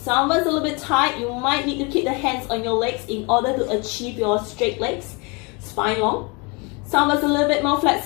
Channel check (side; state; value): right; quieter; 30.0 dB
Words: Some of us a little bit tight, you might need to keep the hands on your legs in order to achieve your straight legs, spine long. Some of us a little bit more